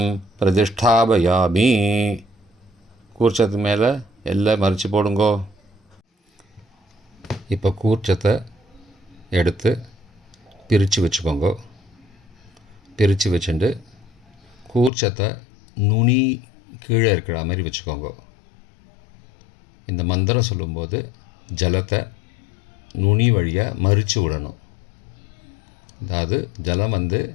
பிரதிஷ்டாபயாமி. கூர்ச்சத்து மேலே எல்லை மறித்து போடுங்கோ. இப்போ கூர்ச்சத்தை எடுத்து பிரித்து வச்சுக்கோங்க. பிரித்து வச்சுட்டு கூர்ச்சத்தை நுனி கீழே இருக்கிற மாதிரி வச்சுக்கோங்க. இந்த மந்திரம் சொல்லும்போது ஜலத்தை நுனி வழியாக மறித்து விடணும். அதாவது ஜலம்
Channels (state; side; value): drops out; right; at 14.9 s